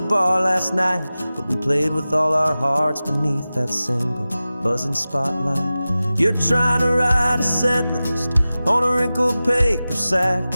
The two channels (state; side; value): inverted; both; correlation -0.96